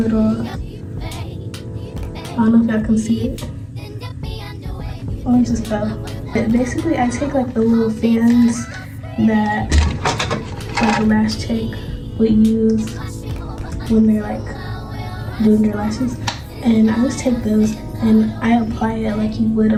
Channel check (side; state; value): both; identical; correlation 1.00